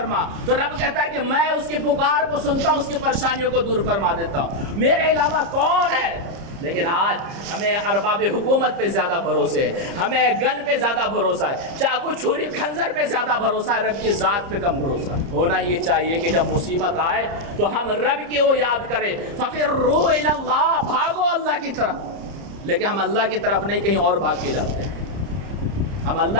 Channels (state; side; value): late; left; 30 ms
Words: تو رب کہتا ہے کہ میں اس کی پکار کو سنتا ہوں، اس کی پریشانیوں کو دور فرما دیتا ہوں، میرے علاوہ کون ہے؟ لیکن آج ہمیں ارباب حکومت پہ زیادہ بھروسے ہے، ہمیں گن پہ زیادہ بھروسہ ہے، چاقو چھری خنجر پہ زیادہ بھروسہ ہے، رب کی ذات پہ کم بھروسہ ہے۔ ہونا یہ چاہیے کہ جب مصیبت آئے تو ہم رب کی وہ یاد کریں، فَفِرُّوا إِلَى اللَّهِ، بھاگو اللہ کی طرف۔ لیکن ہم اللہ کی طرف نہیں، کہیں اور بھاگ کے جاتے ہیں۔ ہم